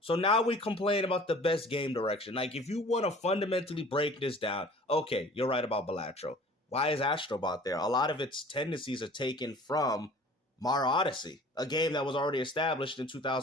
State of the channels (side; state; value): both; normal; correlation 0.47